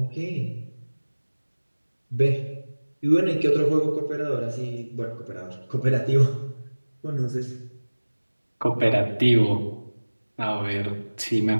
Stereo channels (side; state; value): both; inverted; correlation -1.00